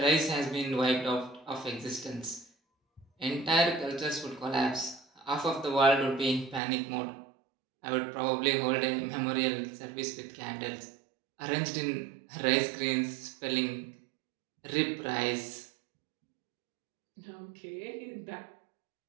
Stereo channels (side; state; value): left; drops out; at 6.6 s